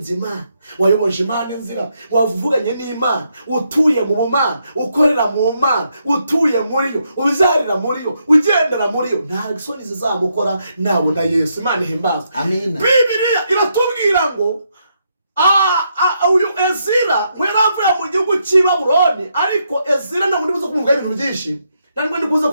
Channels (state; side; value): inverted; both; correlation -0.78